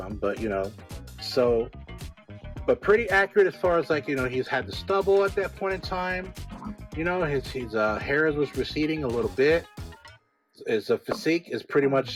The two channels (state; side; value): identical; both; correlation 1.00